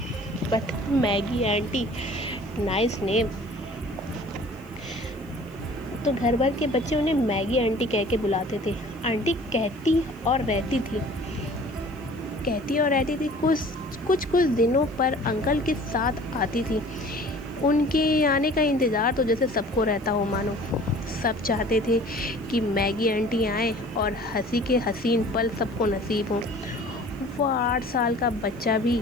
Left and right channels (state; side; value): noise; left; hiss, 28 dB below the sound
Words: But Maggie auntie, nice name. तो घर भर के बच्चे उन्हें मैगी आंटी कह के बुलाते थे। आंटी कहती और रहती थी कुछ दिनों पर अंकल के साथ आती थी। उनके आने का इंतज़ार तो जैसे सबको रहता हो मानो। सब चाहते थे कि मैगी आंटी आए और हंसी के हसीन पल सबको नसीब हों। वो 8 साल का बच्चा भी